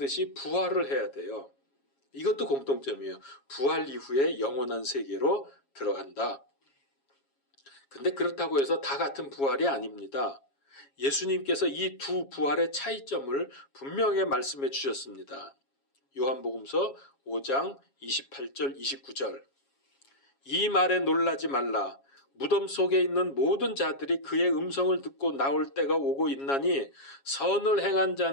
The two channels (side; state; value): right; late; 7.3 ms